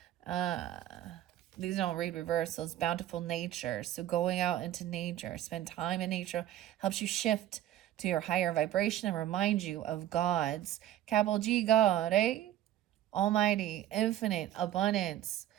These don't read reversals. Bountiful nature. So going out into nature, spend time in nature, helps you shift to your higher vibration and remind you of God's, capital G, God, Almighty, infinite, abundance.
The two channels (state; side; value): quieter; left; 12.6 dB